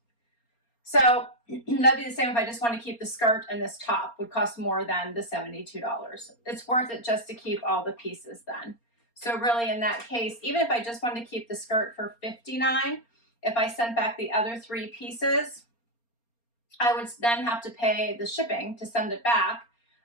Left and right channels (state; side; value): late; right; 4.3 ms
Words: So that'd be the same if I just want to keep the skirt and this top, would cost more than the $72. It's worth it just to keep all the pieces then. So really in that case, even if I just wanted to keep the skirt for $59, if I sent back the other 3 pieces, I would then have to pay the shipping to send it back.